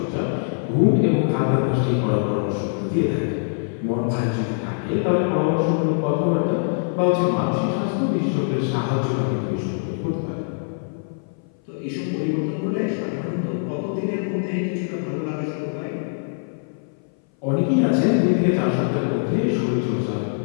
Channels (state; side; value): silent; right; 59 dB below the other